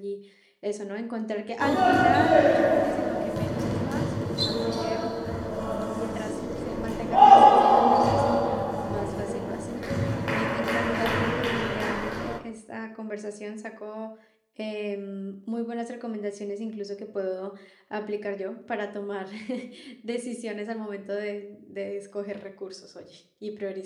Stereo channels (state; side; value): identical; both; correlation 1.00